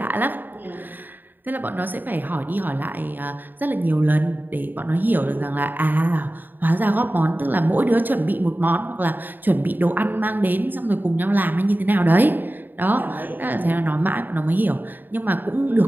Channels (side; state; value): left; late; 0.090 ms